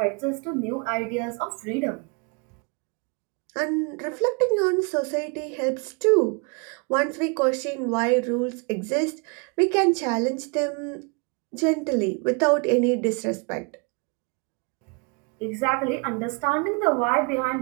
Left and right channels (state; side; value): quieter; left; 33.4 dB